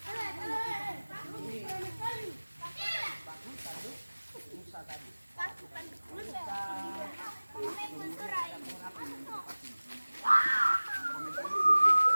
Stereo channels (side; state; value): both; inverted; correlation -1.00